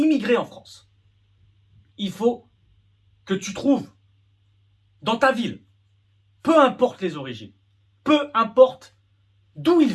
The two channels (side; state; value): both; identical; correlation 1.00